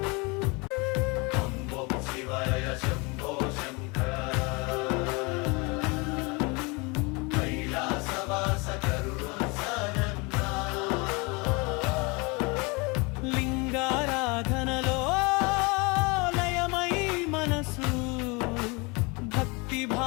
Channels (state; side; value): quieter; right; 28.2 dB